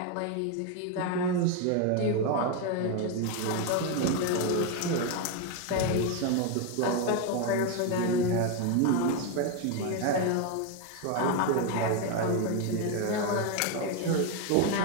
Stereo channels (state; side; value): different; both; correlation 0.02